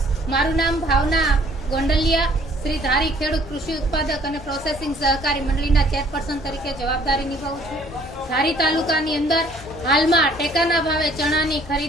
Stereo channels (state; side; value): normal; both; correlation 0.58